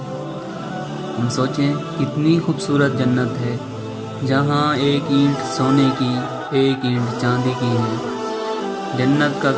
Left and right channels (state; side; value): identical; both; correlation 1.00